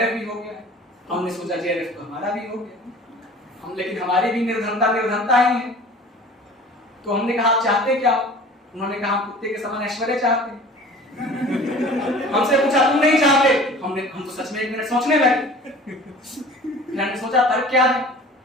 भी हो गया। हमने सोचा जेआरएफ तो हमारा भी हो गया, हम लेकिन हमारी भी निर्धनता ही है। तो हमने कहा आप चाहते क्या? उन्होंने कहा हम कुत्ते के समान ऐश्वर्य चाहते हैं। हमसे पूछा तुम नहीं चाहते? हम तो सच में 1 मिनट सोचने लगे। फिर हमने सोचा तर्क क्या है,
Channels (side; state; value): both; normal; correlation 0.44